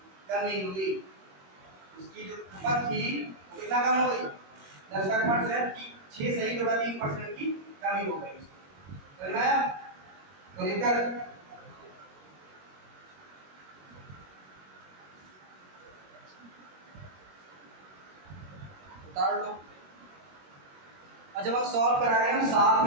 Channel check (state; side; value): late; left; 21 ms